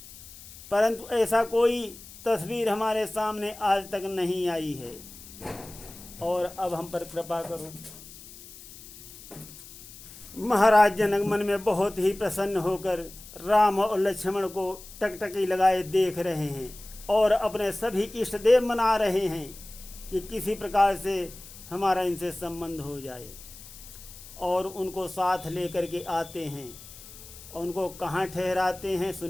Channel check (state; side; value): noise; left; hiss, 17 dB below the sound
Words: परंतु ऐसा कोई तस्वीर हमारे सामने आज तक नहीं आई है। और अब हम पर कृपा करो। महाराज जनक मन में बहुत ही प्रसन्न होकर राम और लक्ष्मण को टकटकी लगाए देख रहे हैं और अपने सभी इष्ट देव मना रहे हैं कि किसी प्रकार से हमारा इनसे संबंध हो जाए। और उनको साथ लेकर के आते हैं और उनको कहाँ ठहराते हैं